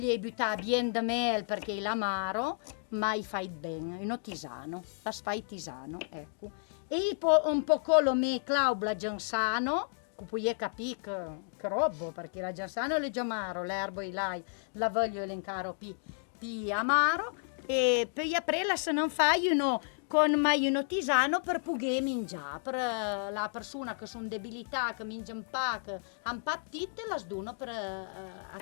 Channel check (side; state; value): right; silent; digital silence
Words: butta bien de mel perché l'amaro, ma i fai bene, uno tisano, la fai tisano, ecco. E un po' lo me claubla giansano, che puoi capire che roba, perché la giansano è amaro, l'erbo e la voglio elencare più amaro, e poi aprella se non fai uno con mai uno tisano per poter mangiare, per la persona che sono debilità, che mangiano pa, che hanno pa appetito, la sdono per